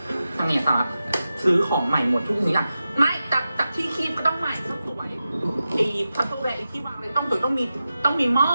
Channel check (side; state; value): both; inverted; correlation -0.92